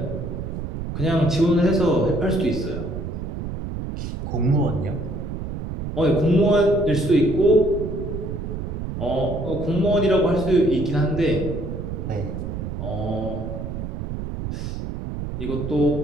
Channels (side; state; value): right; noise; rumble, 6 dB below the sound